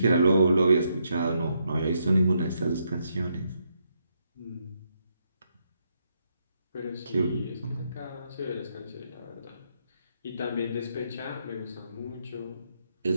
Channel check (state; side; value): inverted; both; correlation -0.78